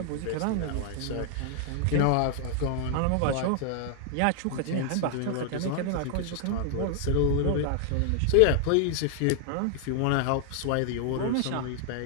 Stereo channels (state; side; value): different; both; correlation 0.00